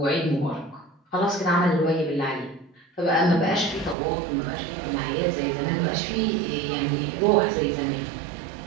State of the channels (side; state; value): left; drops out; at 4.0 s